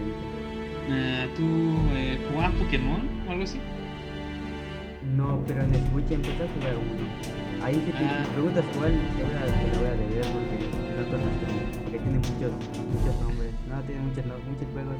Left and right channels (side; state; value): both; identical; correlation 1.00